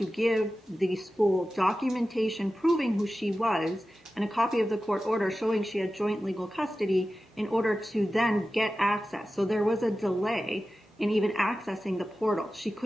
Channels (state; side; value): normal; both; correlation 0.94